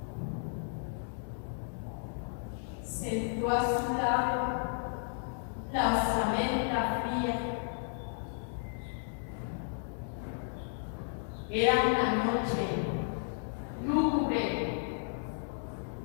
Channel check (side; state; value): right; silent; digital silence